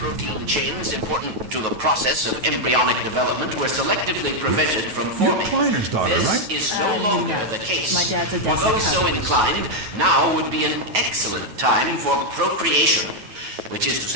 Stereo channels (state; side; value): late; left; 9.2 ms